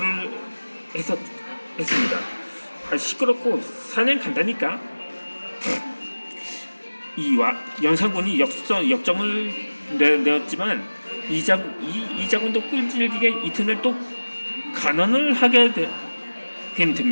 했습니다. 시끄럽고 사냥 간다니까. 연산군이 역정을 내었지만 이자군도 끈질기게 이튿날 또 간언을 하게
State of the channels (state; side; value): inverted; both; correlation -1.00